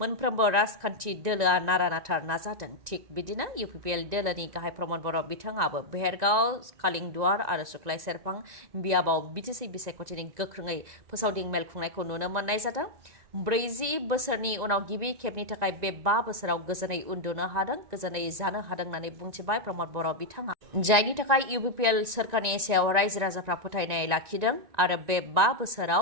मोनफ्रोमबो राजखान्थि दोलोआ नारा नाथार नाजादों। थिग बिदिनो UPPL दोलोनि गाहाय प्रमद बर' बिथाङाबो बेहेरगाव, कालिंदुवार आरो सुख्लाय सेरफां बियाबाव बिटिसि बिसायख'थिनि गोख्रोङै फोसावदिं मेल खुंनायखौ नुनो मोननाय जादों। 40 बोसोरनि उनाव गिबि खेबनि थाखाय बे 5 बोसोराव गोजोनै उन्दुनो हादों, गोजोनै जानो हादों होननानै बुंथिबाय प्रमद बर' बिथाङा। जायनि थाखाय UPPL सोरखारनि सायाव रायजो राजाफ्रा फोथायनाय लाखिदों आरो बे 5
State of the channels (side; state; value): left; late; 1.9 ms